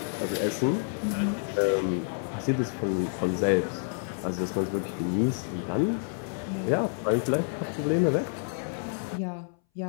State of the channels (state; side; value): silent; right; 59 dB below the other